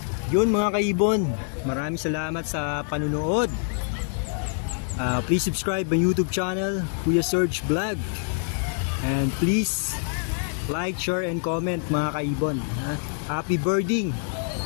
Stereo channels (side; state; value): right; silent; 61 dB below the other